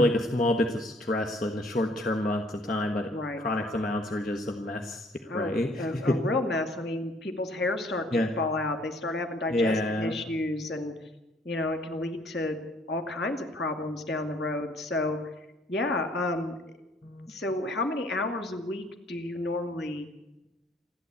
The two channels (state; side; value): normal; both; correlation 0.60